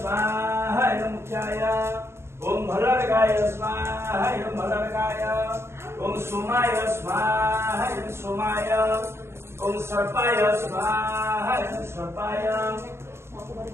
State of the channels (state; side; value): late; left; 0.12 ms